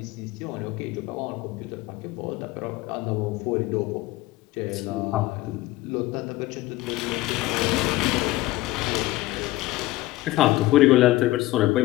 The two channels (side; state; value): right; quieter; 17.9 dB